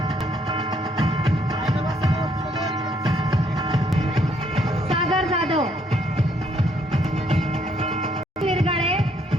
सागर जाधव, मिरगाळे,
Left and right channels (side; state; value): both; normal; correlation 0.69